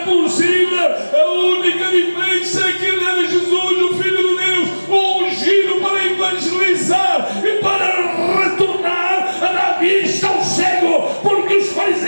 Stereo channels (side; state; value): both; inverted; correlation -1.00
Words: A única diferença é que ele era Jesus, o Filho de Deus, o ungido para evangelizar e para retornar a dar vista ao cego, porque os